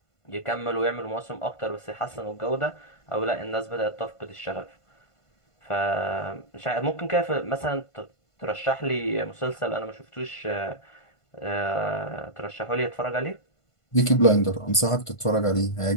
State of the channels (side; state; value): right; late; 1.5 ms